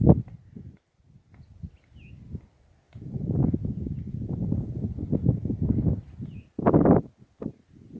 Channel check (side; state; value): both; identical; correlation 1.00